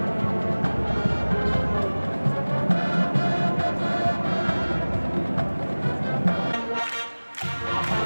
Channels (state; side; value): inverted; both; correlation -1.00